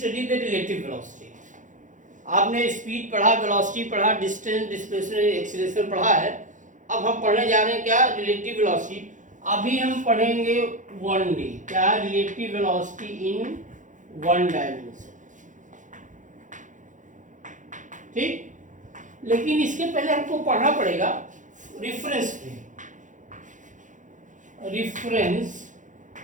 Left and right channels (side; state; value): left; late; 0.37 ms